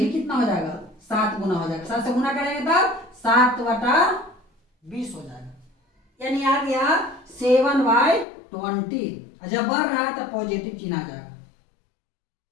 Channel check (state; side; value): drops out; right; at 8.2 s